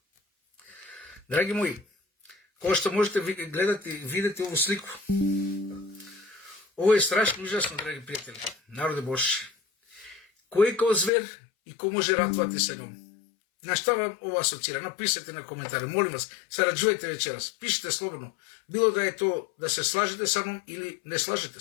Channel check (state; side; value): drops out; right; at 11.1 s